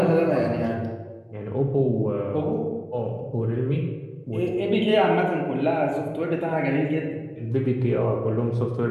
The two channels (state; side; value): identical; both; correlation 1.00